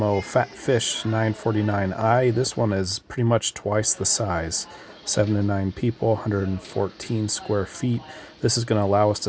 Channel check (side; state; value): both; identical; correlation 1.00